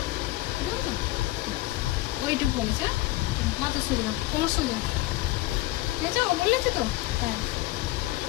ওইটুকু বলেছে, মাথা সোজা কোমর সোজা, ঠিক আছে ও বলেছে তো, হ্যাঁ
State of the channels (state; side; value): quieter; right; 18.1 dB